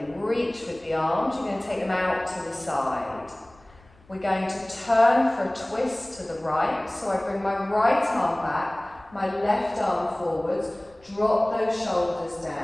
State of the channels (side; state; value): left; noise; rumble, 28 dB below the sound